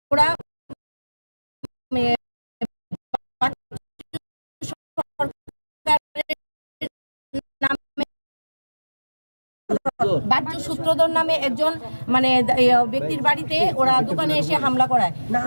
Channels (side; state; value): both; inverted; correlation -1.00